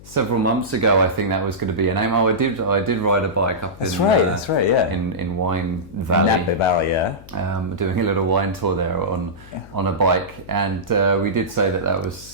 several months ago, I think that was going to be a name. I did ride a bike up that's right, yeah. in Wine Valley. Napa Valley, yeah. Doing a little wine tour there on a bike, and we did say that was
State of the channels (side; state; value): left; noise; hum, 20 dB below the sound